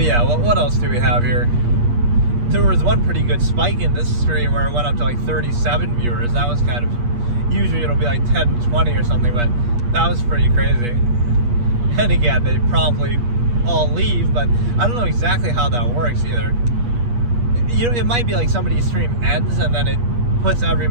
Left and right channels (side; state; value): left; late; 8.4 ms